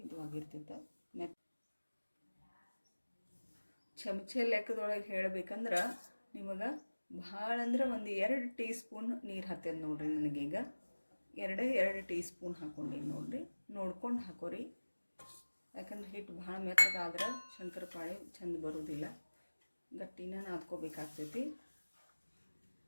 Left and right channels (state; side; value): inverted; both; correlation -1.00